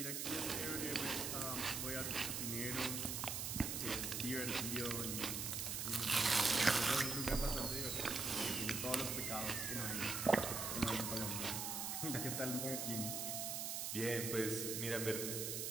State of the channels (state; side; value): noise; right; hiss, 2 dB below the sound